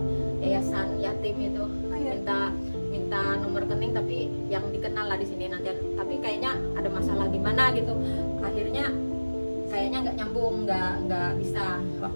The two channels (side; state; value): both; inverted; correlation -1.00